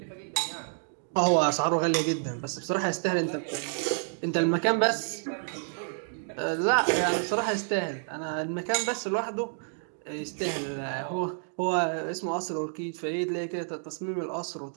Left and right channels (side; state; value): left; silent; 58 dB below the other